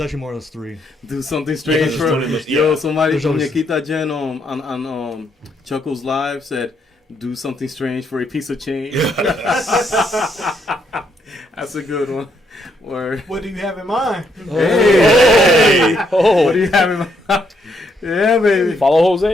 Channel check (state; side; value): normal; both; correlation 0.74